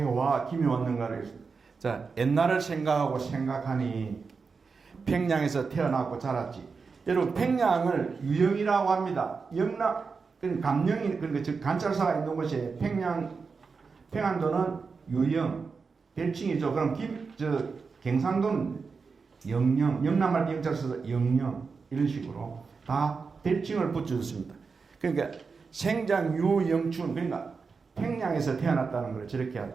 와 김이 왔는가를 자 옛날을 생각하니 평양에서 태어났고 자랐지. 여러분 평양을 유영이라고 합니다. 영남 감영이 그러니까 즉 관찰사가 있는 곳이 평안도는 유영 별칭이죠. 그럼 경상도는 영영, 영남할 때 영자를 써서 영영 이런 식으로 다 별칭을 붙여줬습니다. 그러니까 생장유영춘, 그러니까 평양에서 태어났다는 걸 저렇게 하죠.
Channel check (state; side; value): quieter; left; 4.9 dB